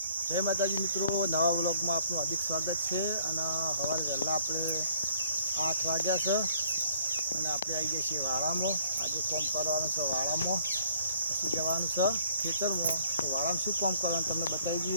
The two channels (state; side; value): inverted; both; correlation -0.61